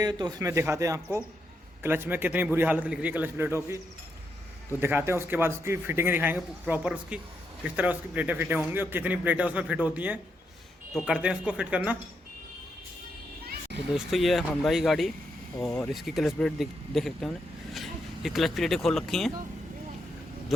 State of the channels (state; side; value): normal; both; correlation 0.81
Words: तो उसमें दिखाते हैं आपको क्लच में कितनी बुरी हालत लिख रही है क्लच प्लेटों की, तो दिखाते हैं। उसके बाद उसकी फिटिंग दिखाएंगे प्रॉपर, उसकी किस तरह उसकी प्लेटें फिटें होंगी और कितनी प्लेटें उसमें फिट होती हैं। तो करते हैं उसको फिट करना। तो दोस्तों, ये है होंडा की गाड़ी और इसकी क्लच प्लेट देख सकते हैं। ये क्लच प्लेटें खोल रखी हैं,